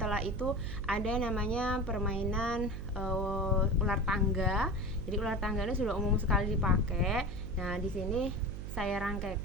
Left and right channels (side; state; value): right; noise; hum, 7 dB below the sound